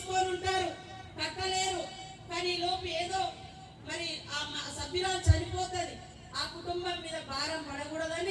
ఉంటారు, కట్టలేరు, కానీ లోపు ఏదో మరి ఆ సభ్యురాలు చనిపోతుంది, ఆ కుటుంబం మీద భారం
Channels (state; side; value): identical; both; correlation 1.00